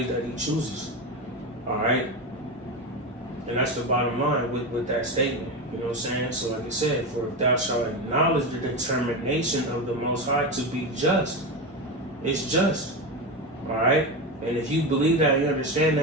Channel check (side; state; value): both; normal; correlation 0.18